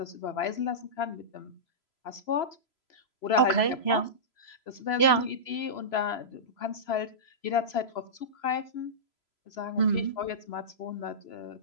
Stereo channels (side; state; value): right; late; 3.0 ms